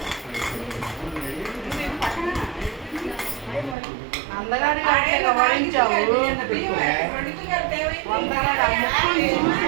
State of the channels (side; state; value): left; drops out; at 3.8 s